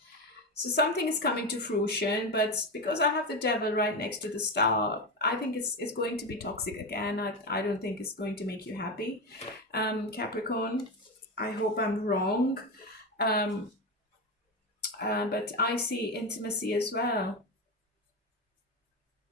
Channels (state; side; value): normal; both; correlation 0.17